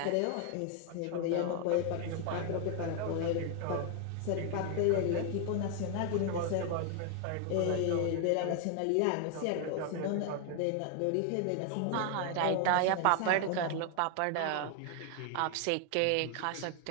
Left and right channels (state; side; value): different; both; correlation 0.00